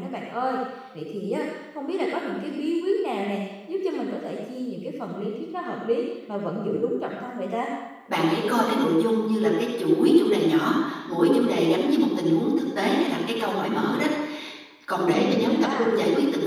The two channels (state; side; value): identical; both; correlation 1.00